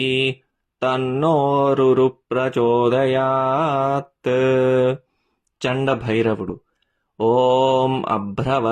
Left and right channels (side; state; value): both; identical; correlation 1.00